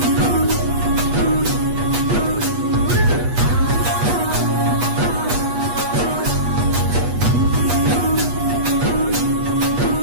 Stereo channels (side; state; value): left; late; 8.3 ms